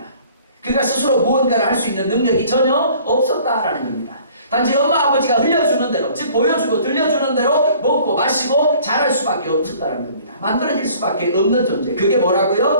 그가 스스로 무언가를 할 수 있는 능력이 전혀 없었다라는 겁니다. 단지 엄마 아버지가 흘려주는 대로, 즉 보여주고 들려주는 대로 먹고 마시고 자랄 수밖에 없었다는 겁니다. 만들어질 수밖에 없는 존재, 그게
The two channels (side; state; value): both; inverted; correlation -0.53